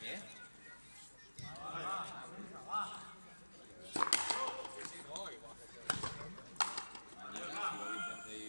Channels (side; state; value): both; inverted; correlation -1.00